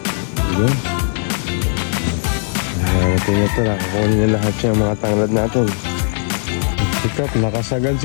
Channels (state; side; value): silent; right; 58 dB below the other